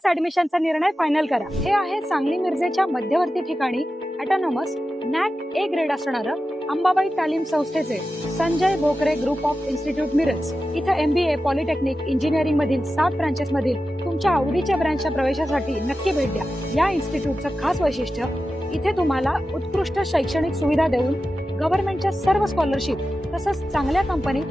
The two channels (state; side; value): normal; both; correlation 0.92